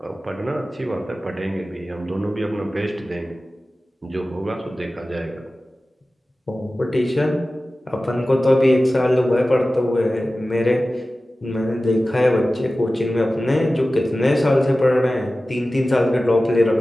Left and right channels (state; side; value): normal; both; correlation 0.96